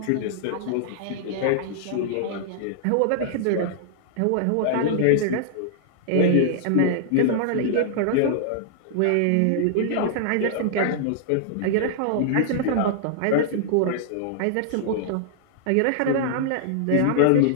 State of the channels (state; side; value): different; both; correlation -0.01